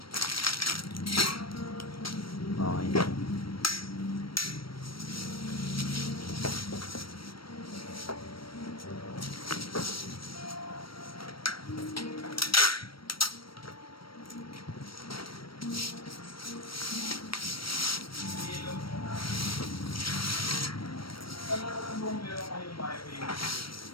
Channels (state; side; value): late; right; 0.74 ms